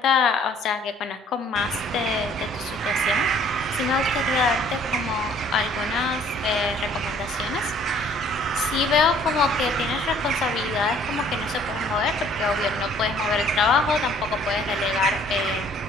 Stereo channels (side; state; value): both; normal; correlation 0.58